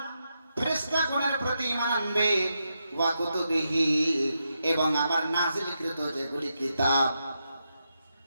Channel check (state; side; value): inverted; both; correlation -0.84